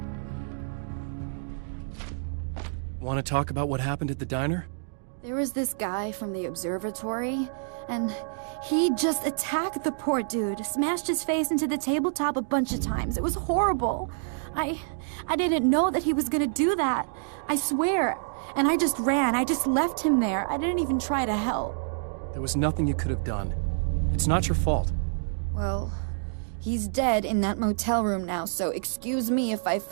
Want to talk about what happened at the diner? There was this guy from the observatory, and he just attacked the poor dude, smashed his face into the tabletop a bunch of times. It was horrible. I didn't know that he was gonna do that. I swear. And I just ran. I just left him there. I didn't even try to help. There was nothing you could have done. It's not your fault. Well, he's dead in that motel room now, so excuse me if I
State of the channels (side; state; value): left; silent; digital silence